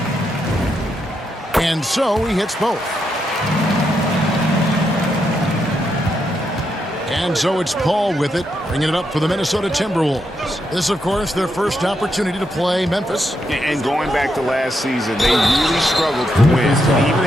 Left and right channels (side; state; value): both; normal; correlation 0.81